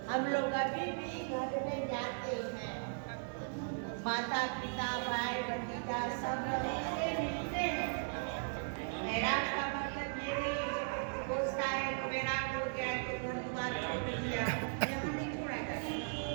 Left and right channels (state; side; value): silent; left; digital silence